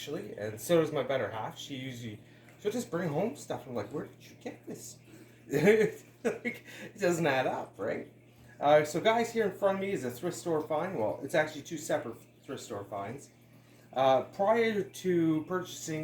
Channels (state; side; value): identical; both; correlation 1.00